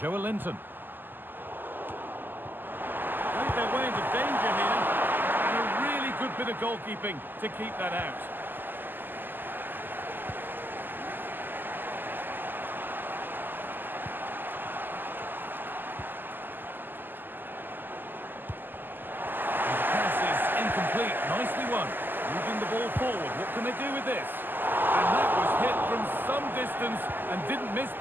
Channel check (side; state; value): left; late; 0.091 ms